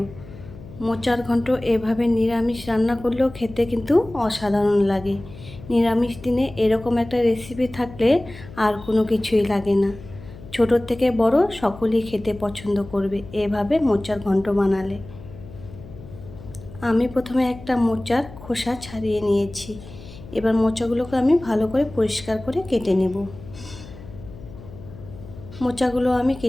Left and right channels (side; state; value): left; noise; hum, 16 dB below the sound